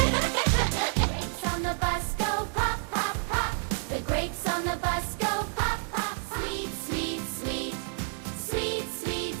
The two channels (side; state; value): left; silent; 58 dB below the other